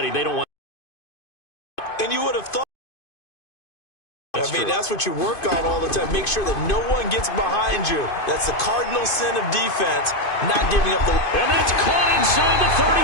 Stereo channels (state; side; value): late; right; 2.5 ms